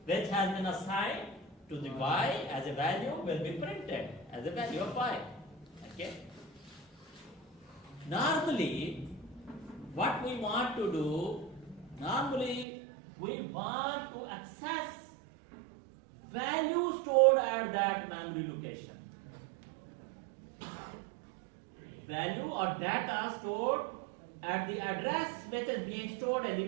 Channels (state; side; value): drops out; left; at 12.7 s